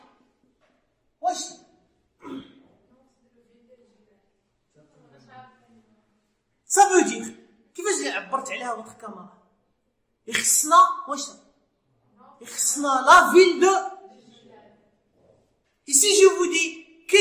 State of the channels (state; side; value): identical; both; correlation 1.00